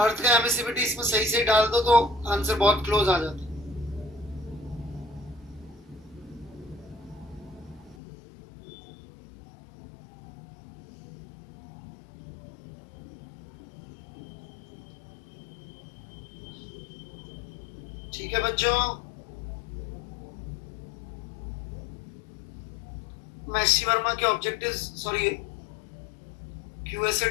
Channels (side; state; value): right; drops out; at 8.0 s